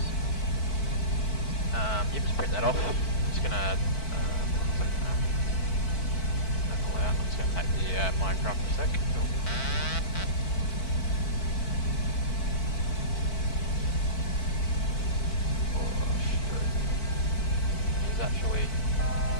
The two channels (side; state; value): right; late; 4.5 ms